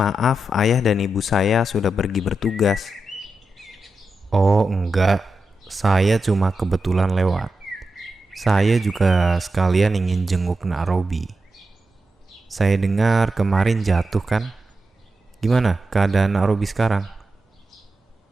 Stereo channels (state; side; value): normal; both; correlation 0.89